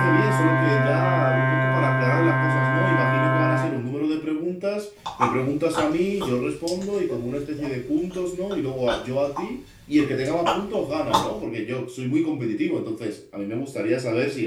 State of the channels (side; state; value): both; identical; correlation 1.00